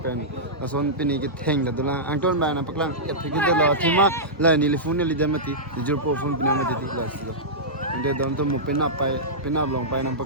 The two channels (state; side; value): normal; both; correlation -0.13